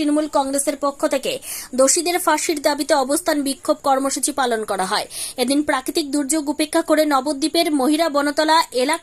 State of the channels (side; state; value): both; identical; correlation 1.00